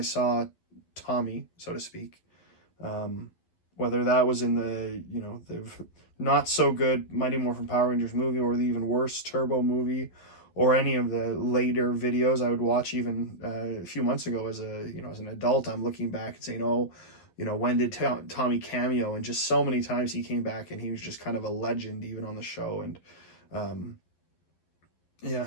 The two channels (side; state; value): right; late; 11 ms